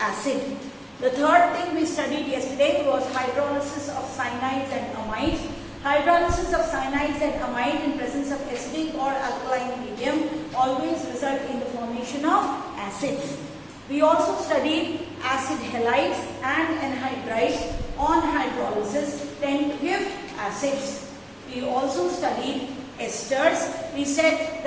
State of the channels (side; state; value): both; identical; correlation 1.00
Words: The third thing we studied yesterday was hydrolysis of cyanides and amides. Hydrolysis of cyanides and amide in presence of acidic or alkaline medium always result in the formation of acids. We also studied acid halides and anhydrides on hydrolysis tend to give acids. We also studied esters. We said